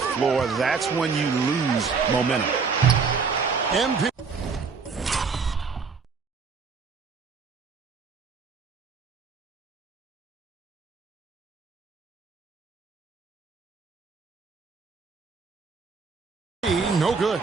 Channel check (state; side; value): quieter; left; 5.2 dB